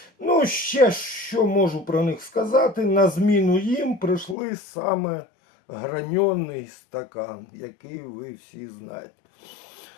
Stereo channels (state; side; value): drops out; right; at 4.4 s